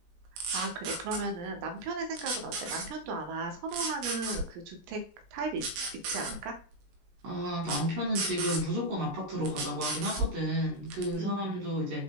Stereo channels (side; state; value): left; late; 17 ms